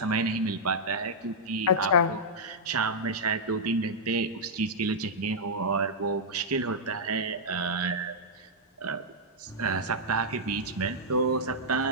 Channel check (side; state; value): both; normal; correlation -0.08